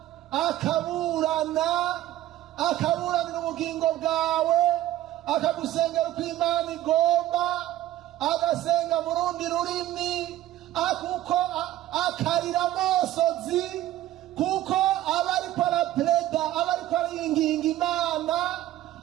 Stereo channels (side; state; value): left; quieter; 14.3 dB